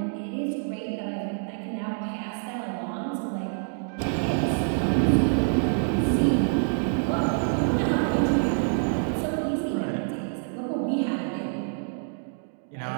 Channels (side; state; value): left; silent; 60 dB below the other